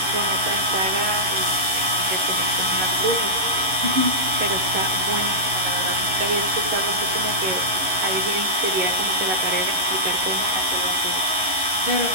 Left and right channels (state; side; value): late; left; 11 ms